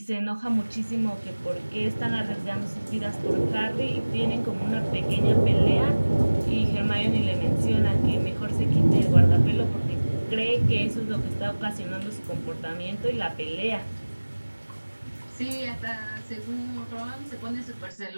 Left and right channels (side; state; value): both; inverted; correlation -1.00